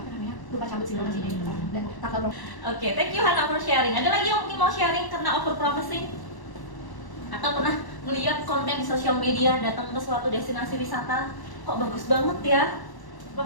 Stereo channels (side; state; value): right; late; 1.0 ms